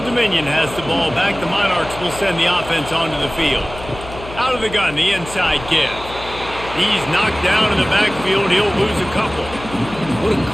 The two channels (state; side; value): noise; left; hum, 14 dB below the sound